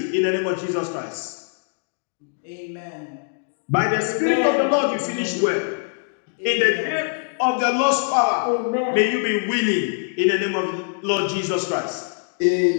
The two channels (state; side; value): silent; right; digital silence